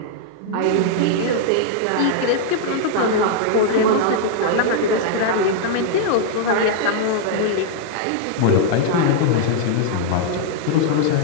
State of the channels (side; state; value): both; different; correlation -0.01